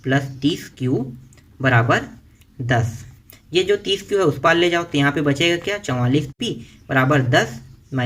प्लस 30q बराबर 10। ये जो 30q है उस पार ले जाओ, तो यहाँ पे बचेगा क्या, 44p बराबर 10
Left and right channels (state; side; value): identical; both; correlation 1.00